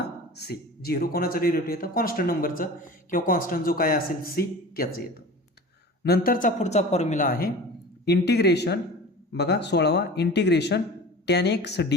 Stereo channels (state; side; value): normal; both; correlation 0.37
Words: c. 0 कोणाचं डेरिव्हेटिव्ह येतं, कॉन्स्टंट नंबरचं किंवा कॉन्स्टंट जो काय असेल c त्याचं येतं. नंतरचा पुढचा फॉर्म्युला आहे इंटिग्रेशन, बघा 16वा, इंटिग्रेशन tan x